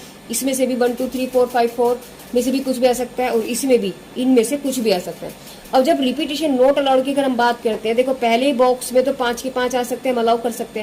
इसमें से भी 1 2 3 4 5 4 में से भी कुछ भी आ सकता है और इसमें भी इनमें से कुछ भी आ सकता है। अब जब रिपीटेशन नॉट अलाउड की अगर हम बात करते हैं, देखो पहले बॉक्स में तो 5 के 5 आ सकते हैं, हम अलाउ कर सकते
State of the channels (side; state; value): both; identical; correlation 1.00